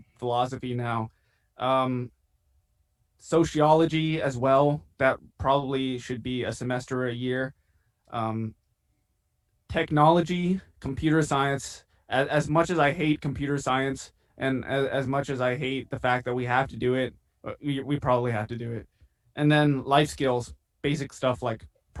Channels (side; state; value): both; identical; correlation 1.00